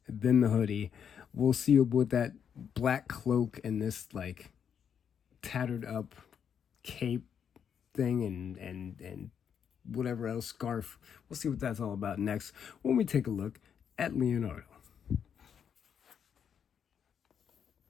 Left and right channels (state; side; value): quieter; right; 7.9 dB